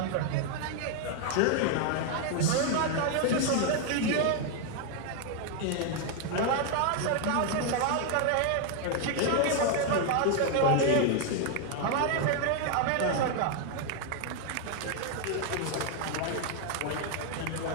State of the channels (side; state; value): both; different; correlation 0.00